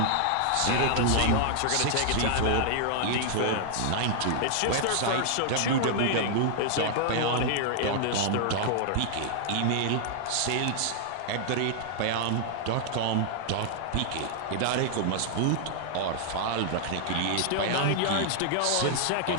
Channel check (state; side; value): different; both; correlation -0.01